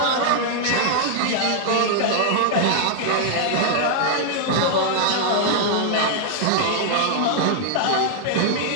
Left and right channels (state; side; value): different; both; correlation -0.01